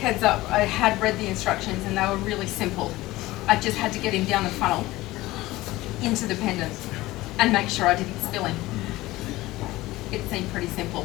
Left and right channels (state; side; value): quieter; right; 18.3 dB